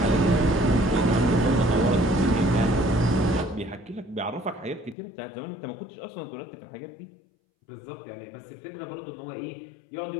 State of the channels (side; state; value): right; drops out; at 5.0 s